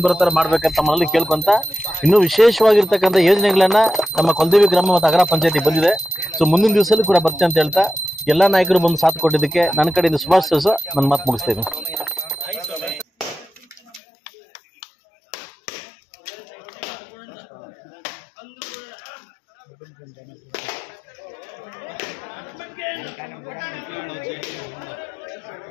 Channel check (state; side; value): drops out; right; at 14.0 s